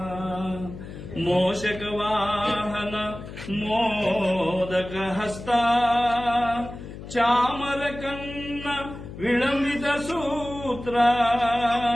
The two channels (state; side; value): noise; left; hum, 12 dB below the sound